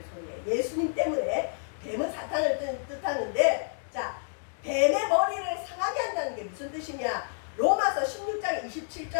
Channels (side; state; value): right; silent; digital silence